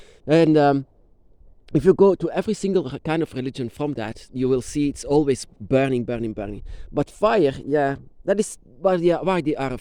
And if you go to every single kind of religion from that, you will see it's always burning, burning, burning. But fire, yeah, that is why they are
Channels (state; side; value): identical; both; correlation 1.00